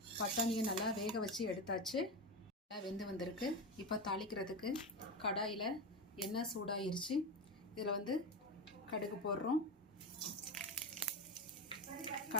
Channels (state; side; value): normal; both; correlation 0.19